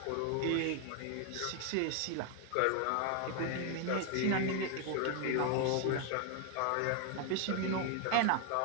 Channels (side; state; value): both; different; correlation 0.01